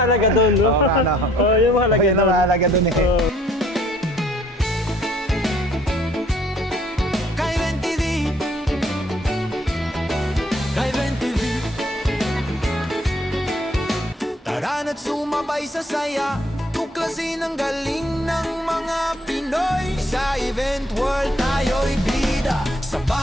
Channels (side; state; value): both; normal; correlation 0.62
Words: doon, no? Oo, ano? Oh, yun ang mahalaga Yun ang mahalaga doon eh. Oh. At sumabay sa saya, tuklasin ang galing ng mga Pinoy. Sa event world tayo'y bida, sa